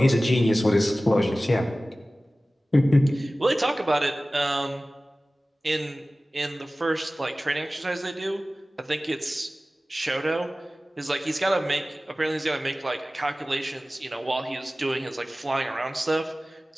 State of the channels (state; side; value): normal; both; correlation 0.97